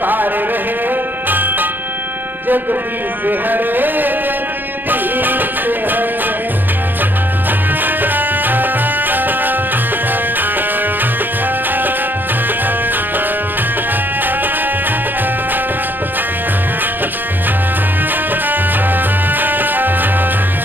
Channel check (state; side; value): late; left; 0.090 ms